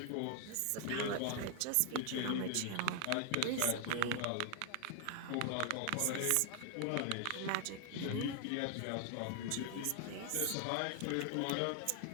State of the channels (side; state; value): both; different; correlation 0.00